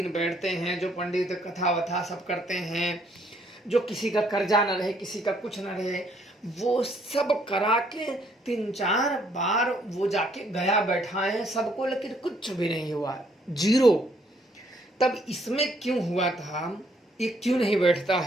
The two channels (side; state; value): both; normal; correlation 0.67